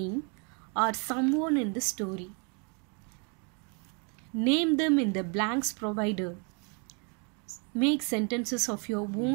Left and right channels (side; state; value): left; quieter; 35.9 dB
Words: or someone in the story. Name them in the blanks provided. Make sentences of your